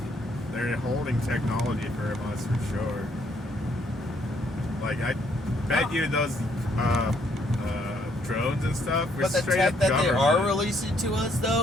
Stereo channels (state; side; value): normal; both; correlation 0.69